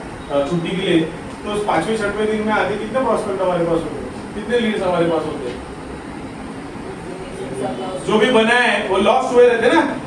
छुट्टी के लिए, तो 5वें 6वें दिन में आते कितने प्रॉस्पेक्ट हमारे पास होते हैं, कितने लीड्स हमारे पास होते हैं। जो भी बना है वो लॉस्ट हुए रहते ना,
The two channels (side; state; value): both; identical; correlation 1.00